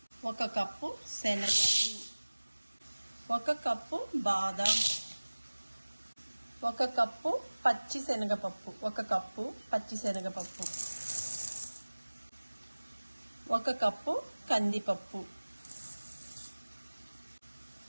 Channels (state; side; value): inverted; both; correlation -1.00